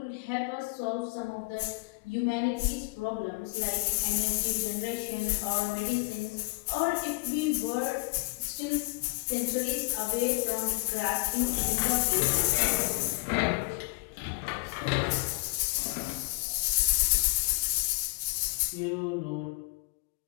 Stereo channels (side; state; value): right; quieter; 27.3 dB